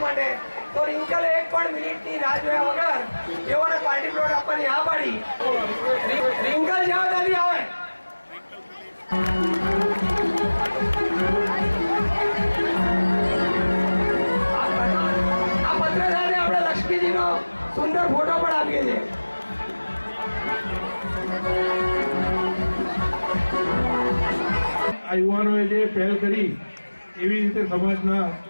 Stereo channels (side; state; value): both; inverted; correlation -1.00